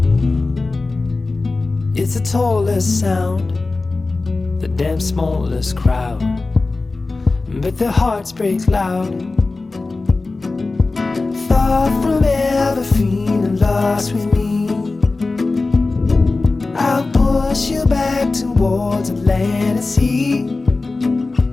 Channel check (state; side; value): quieter; right; 3.5 dB